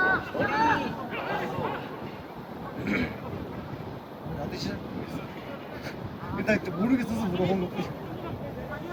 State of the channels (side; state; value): both; identical; correlation 1.00